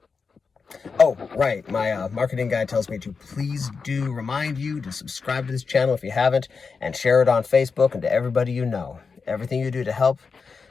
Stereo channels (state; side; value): quieter; right; 5.1 dB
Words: Oh, right. My marketing guy tells me to please do remind you to subscribe to this channel if you haven't, and share it on Facebook and to everybody you know. Everything you do to help